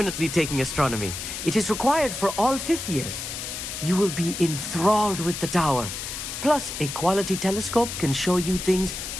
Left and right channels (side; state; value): left; noise; hiss, 6 dB below the sound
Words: taking astronomy. It is required for all 5th years. You will be enthralled with the tower. Plus, a quality telescope can show you things